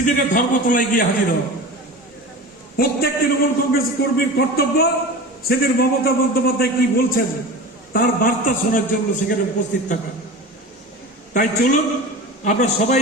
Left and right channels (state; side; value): normal; both; correlation 0.32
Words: ধর্মতলায় গিয়ে হাজির হওয়া। প্রত্যেক তৃণমূল কংগ্রেস কর্মীর কর্তব্য সেদিন মমতা বন্দ্যোপাধ্যায় কি বলছেন তার বার্তা শোনার জন্য সেখানে উপস্থিত থাকা। তাই চলুন আমরা সবাই